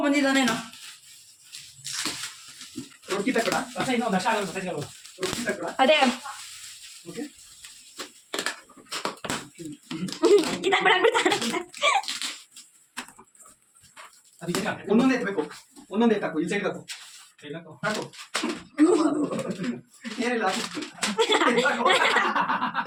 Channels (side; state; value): both; identical; correlation 1.00